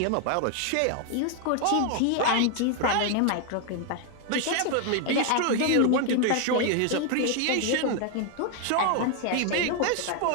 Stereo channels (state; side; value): different; both; correlation 0.01